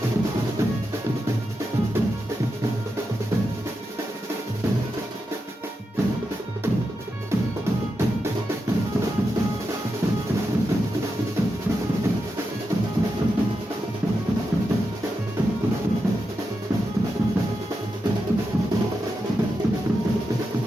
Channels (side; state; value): both; normal; correlation 0.87